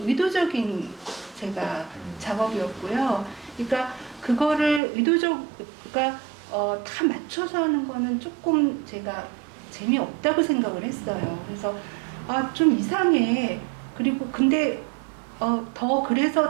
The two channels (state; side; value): drops out; left; at 4.8 s